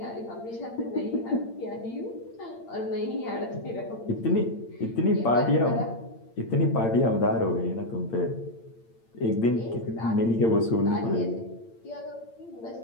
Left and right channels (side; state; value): right; late; 8.8 ms